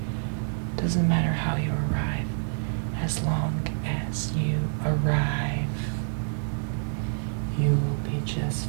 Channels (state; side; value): silent; left; 60 dB below the other